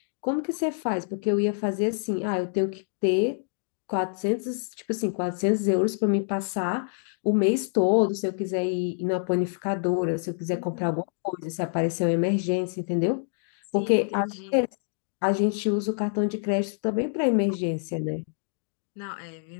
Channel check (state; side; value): silent; right; digital silence